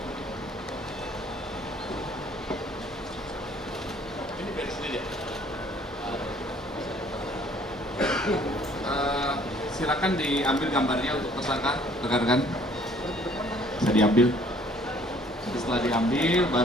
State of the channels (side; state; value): both; normal; correlation 0.58